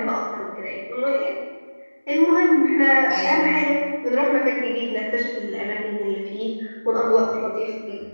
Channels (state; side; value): inverted; both; correlation -1.00